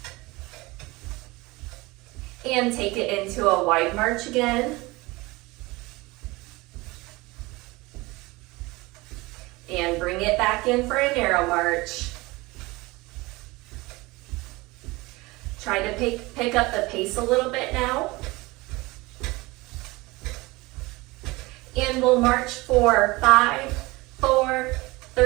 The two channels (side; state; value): left; quieter; 22.3 dB